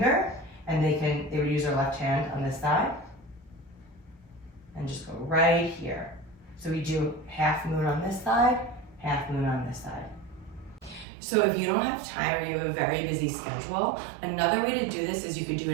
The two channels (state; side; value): drops out; left; at 11.1 s